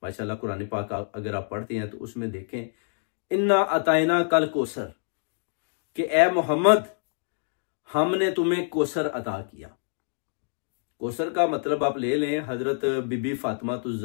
माशाल्लाह कुरान पाक अगर आप पढ़ते हैं तो उसमें देखें, इन्ना अताइना कल कोसर, कि ए मोहम्मद हमने तुम्हें कोसर अता किया। कोसर का मतलब आप ले लें हजरत बीबी फातिमा तुज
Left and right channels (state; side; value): silent; right; digital silence